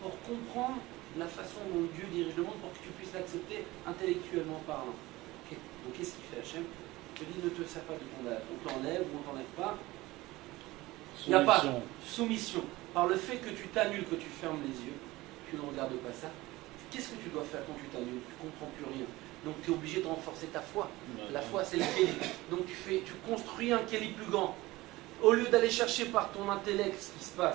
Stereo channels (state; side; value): quieter; left; 19.4 dB